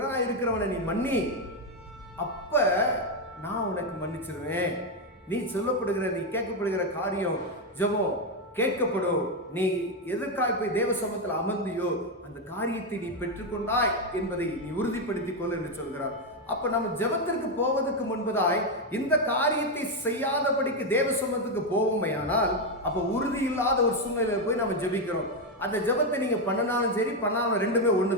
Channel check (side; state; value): both; normal; correlation 0.06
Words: இருக்கிறவனை நீ மன்னி, அப்ப நான் உனக்கு மன்னிச்சிருவேன். நீ கேட்கப்படுகிற காரியம் ஜெபம் கேட்கப்படும். நீ எதற்காக போய் தேவ சமூகத்தில் அமர்ந்தியோ அந்த காரியத்தை நீ பெற்றுக்கொண்டாய் என்பதை நீ உறுதிப்படுத்திக் கொள் என்று சொல்கிறார். அப்ப நம்ம ஜெபத்திற்கு போவதற்கு முன்பதாய் இந்த காரியத்தை செய்யாதபடிக்கு தேவ சமூகத்துக்கு போவோமையானால் அப்ப உறுதி இல்லாத ஒரு சூழ்நிலையில போய் நம்ம ஜெபிக்கிறோம். அந்த ஜெபத்தை நீங்க பண்ணனாலும் சரி பண்ணாலும் ரெண்டுமே